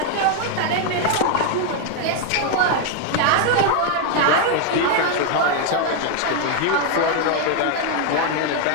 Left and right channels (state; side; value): different; both; correlation 0.00